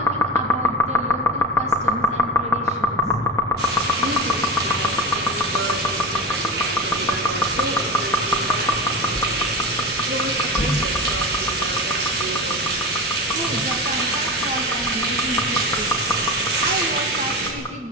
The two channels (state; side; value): normal; both; correlation 0.23